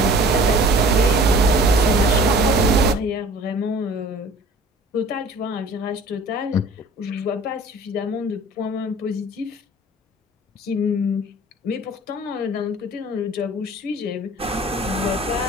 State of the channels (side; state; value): both; normal; correlation 0.47